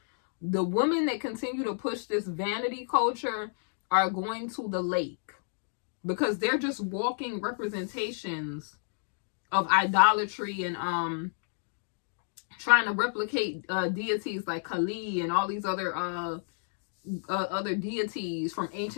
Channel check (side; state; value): right; silent; digital silence